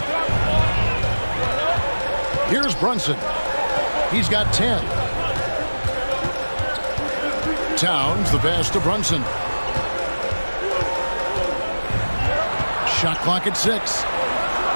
Here's Brunson. He's got 10. Towns, the pass to Brunson. Shot clock at 6.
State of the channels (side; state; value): both; inverted; correlation -1.00